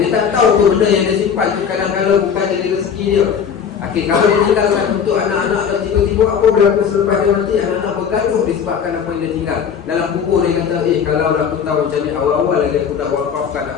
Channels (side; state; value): right; quieter; 7.3 dB